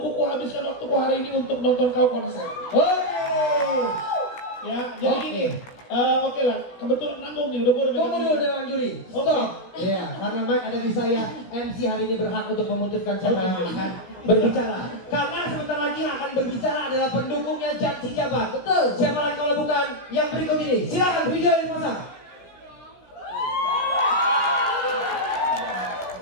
habiskan waktuku hari ini untuk nonton kau konser. Ya, jadi gini. Oke lah, kebetulan nanggung nih, udah boleh. Tunggu dulu dengan juri. Stop. Iya, karena mic ada di saya. MC hari ini berhak untuk memutuskan siapa yang akan berbicara. Karena sebentar lagi yang akan berbicara adalah pendukungnya Jan Sejabat. Betul. Siapa lagi kalau bukan yang berikut ini? Silakan video dipasang.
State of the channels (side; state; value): right; late; 16 ms